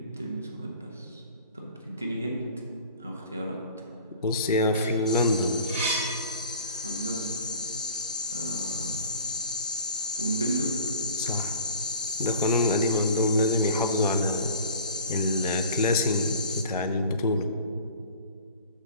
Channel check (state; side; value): inverted; both; correlation -0.43